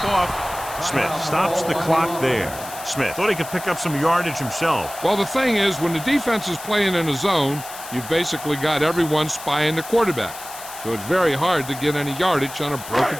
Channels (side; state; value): left; noise; hiss, 13 dB below the sound